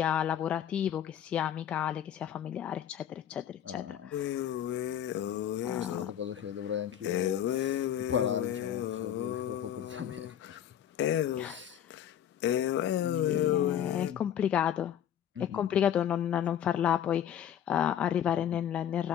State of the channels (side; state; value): right; quieter; 10.0 dB